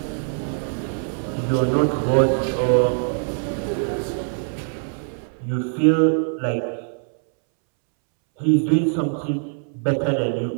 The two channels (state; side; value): silent; left; 64 dB below the other